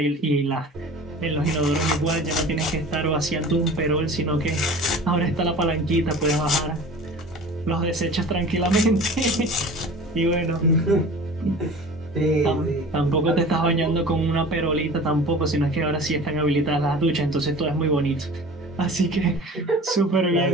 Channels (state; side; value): normal; both; correlation 0.40